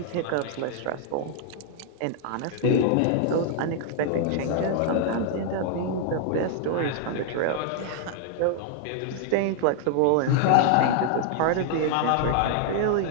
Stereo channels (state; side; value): different; both; correlation 0.00